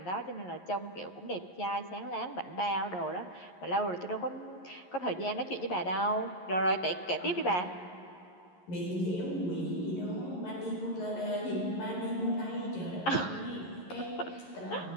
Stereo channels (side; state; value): right; late; 11 ms